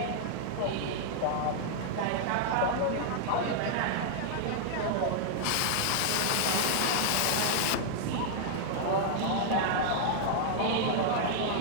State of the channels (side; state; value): both; different; correlation -0.01